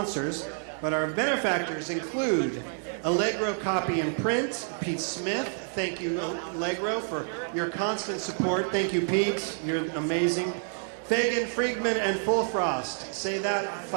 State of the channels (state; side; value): silent; left; 59 dB below the other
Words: But our benefactors include Allegro Copy and Print, Pete Smith. Thank you, Allegro, for your constant support. Thank you, Pete. You're amazing. Fagan, Friedman, and Fullfrost. Say that